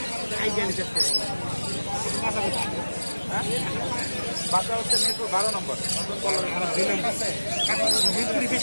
বাচ্চা হচ্ছে মেট্রো 12 নম্বর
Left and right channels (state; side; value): inverted; both; correlation -1.00